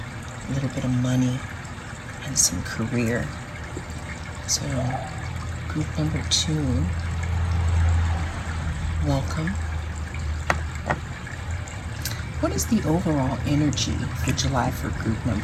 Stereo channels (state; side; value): identical; both; correlation 1.00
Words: a little bit of money, and some career. So, group number two, welcome. What is the overall energy for July for group